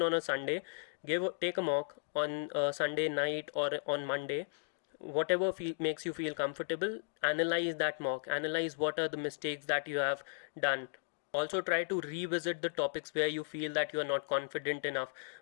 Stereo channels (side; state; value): right; silent; digital silence